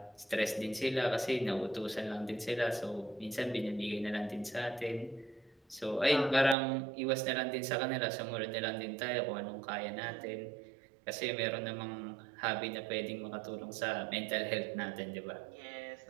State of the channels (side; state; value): left; drops out; at 6.6 s